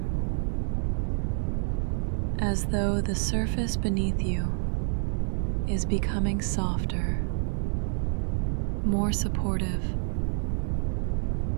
as though the surface beneath you is becoming softer, more supportive,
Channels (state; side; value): silent; left; 59 dB below the other